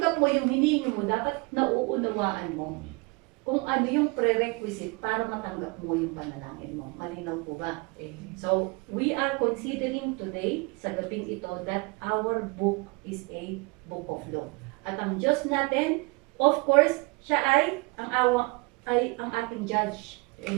mo yung hinihingi mo, dapat nauunawaan mo kung ano yung prerequisite para matanggap mo yung panalangin mo. Malinaw po ba? So, we are considering today, sa gabing ito, that our book is a book of law. At ang Diyos natin, of course, siya ay ang ating judge.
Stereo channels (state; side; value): quieter; left; 27.7 dB